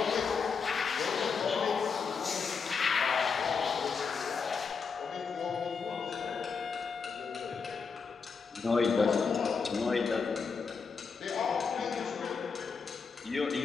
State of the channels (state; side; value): quieter; right; 5.4 dB